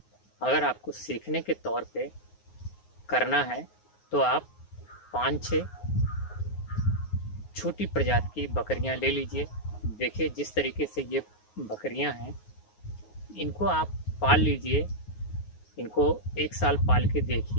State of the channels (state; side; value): late; right; 9.5 ms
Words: अगर आपको सीखने के तौर पे करना है तो आप 5-6 छोटी प्रजाति की बकरियां ले लीजिए। देखिए, जिस तरीके से ये बकरियां हैं इनको आप पाल लीजिए, इनको 1 साल पाल के